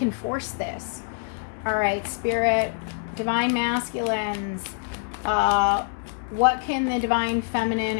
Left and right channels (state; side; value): silent; right; digital silence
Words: force this. All right, Spirit, Divine Masculines, what can the Divine Feminine